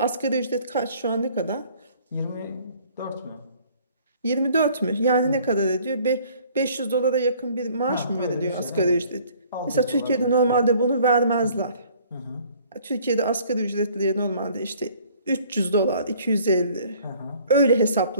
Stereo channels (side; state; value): both; inverted; correlation -0.56